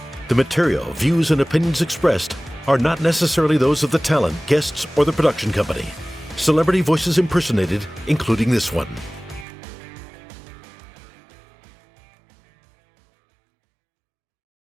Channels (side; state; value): left; drops out; at 9.5 s